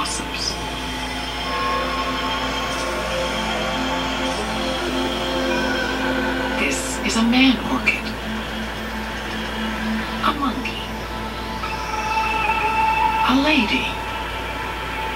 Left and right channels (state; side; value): identical; both; correlation 1.00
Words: This is a man orchid, a monkey, a lady,